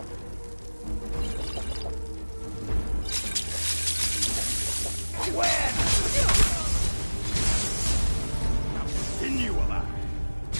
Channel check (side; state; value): both; inverted; correlation -1.00